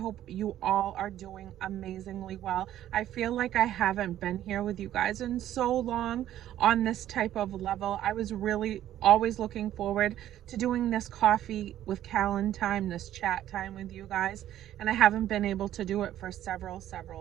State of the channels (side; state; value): left; quieter; 12.3 dB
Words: you all are doing amazingly well. I feel like I haven't been here with you guys in so long on this type of level. I was really always looking forward to doing this coffee with Kalyn time, this chat time with you guys, and I haven't been able to do it for